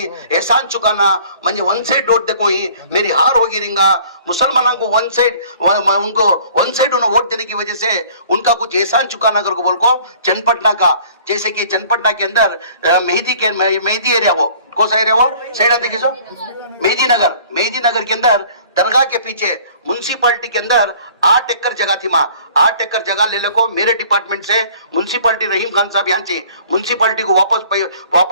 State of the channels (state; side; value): inverted; both; correlation -0.52